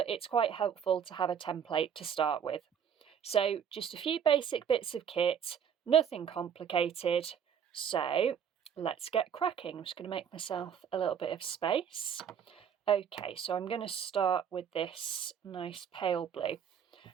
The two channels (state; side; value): quieter; left; 8.0 dB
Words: it's quite helpful to have a template to start with. So just a few basic bits of kit, nothing complicated. So let's get cracking. I'm just going to make myself a little bit of space. Okay, so I'm going to start with this nice pale blue.